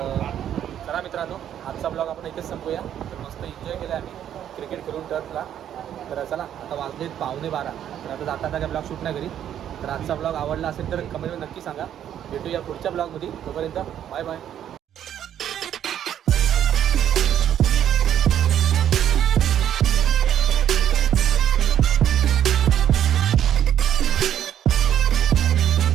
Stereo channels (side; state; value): left; quieter; 10.2 dB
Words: चला मित्रांनो आजचा ब्लॉग आपण इथेच संपूया. तर मस्त एन्जॉय केला आम्ही क्रिकेट खेळून टर्फला. तर चला आता वाजलेत 11:15. तर आता जाता काय ब्लॉग शूट नाही करी. तर आजचा ब्लॉग आवडला असेल तर कमेंटमध्ये नक्की सांगा. भेटूया पुढच्या ब्लॉगमध्ये. तोपर्यंत बाय बाय.